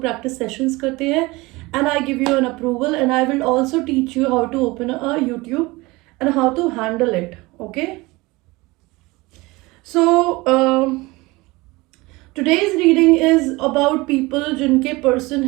प्रैक्टिस सेशंस करते हैं. And I give you an approval and I will also teach you how to open a YouTube and how to handle it. Okay, so today's reading is about people जिनके पर्सन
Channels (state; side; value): quieter; left; 22.4 dB